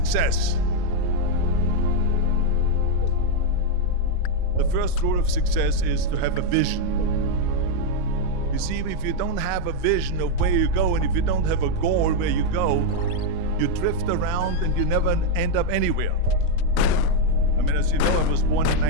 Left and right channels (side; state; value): both; different; correlation 0.00